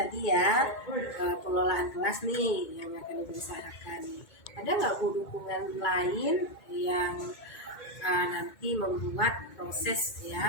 ya pengelolaan kelas nih yang akan diusahakan, ada nggak Bu dukungan lain yang nanti membuat proses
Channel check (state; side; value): late; right; 2.2 ms